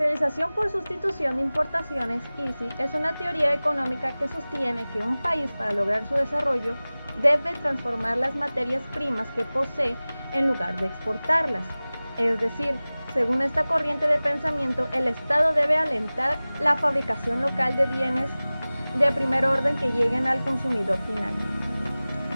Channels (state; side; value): inverted; both; correlation -0.98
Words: por sustitución de importaciones, ISI, es una teoría económica que sostiene que un país, para lograr su desarrollo, debe transformar las materias primas que posee en lugar de exportarlas. Es decir, según esta corriente de pensamiento, el Estado debe alentar la fabricación local de bienes de primer orden que lleguen al consumidor final.